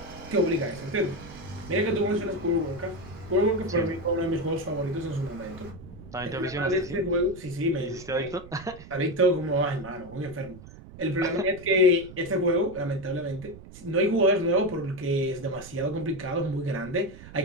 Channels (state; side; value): noise; right; rumble, 17 dB below the sound